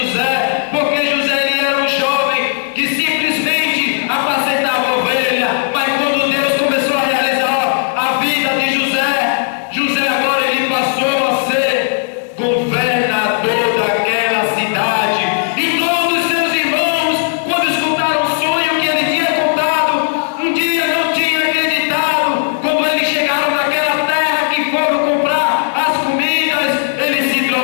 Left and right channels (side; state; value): right; silent; digital silence